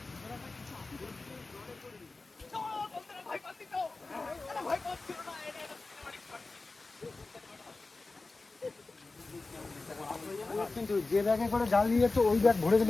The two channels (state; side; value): quieter; right; 3.5 dB